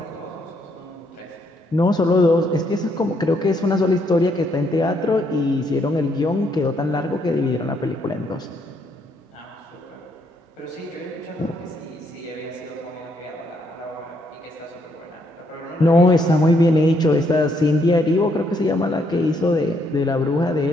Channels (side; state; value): both; normal; correlation 0.73